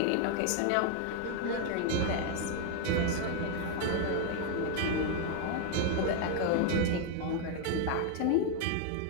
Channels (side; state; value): both; different; correlation 0.00